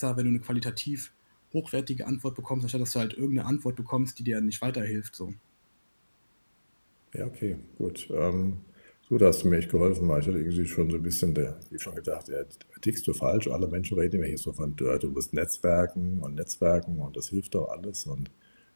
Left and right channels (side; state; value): both; inverted; correlation -1.00